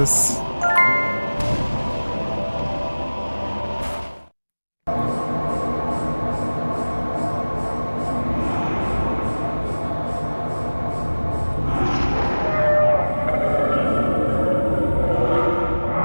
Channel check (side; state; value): both; inverted; correlation -1.00